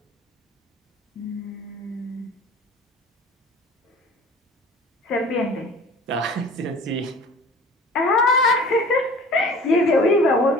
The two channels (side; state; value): both; normal; correlation 0.45